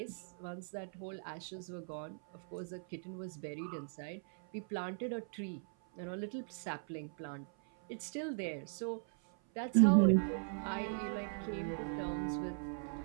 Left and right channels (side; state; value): left; silent; 52 dB below the other